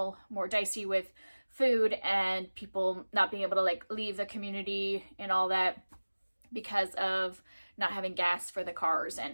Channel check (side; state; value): both; inverted; correlation -1.00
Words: more dicey with food and people not being able to leave the community and all that because of not having gas for the cars